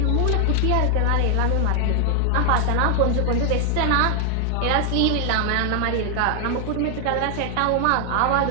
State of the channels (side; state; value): both; different; correlation 0.00